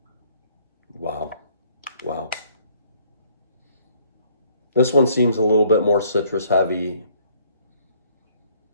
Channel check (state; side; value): inverted; both; correlation -0.63